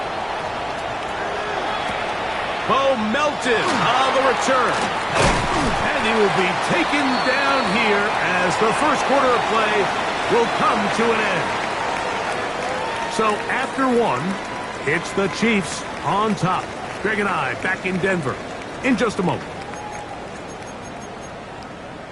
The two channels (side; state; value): both; identical; correlation 1.00